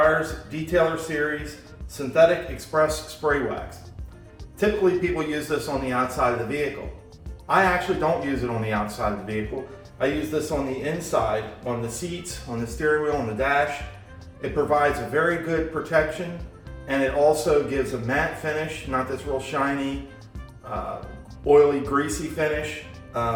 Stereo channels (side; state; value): both; identical; correlation 1.00